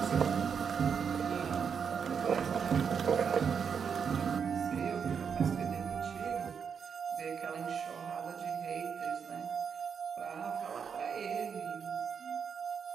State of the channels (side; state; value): left; quieter; 6.8 dB